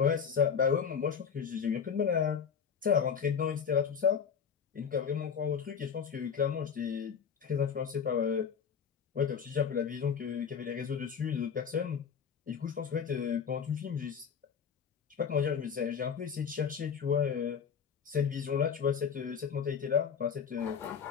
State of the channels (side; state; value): right; quieter; 6.9 dB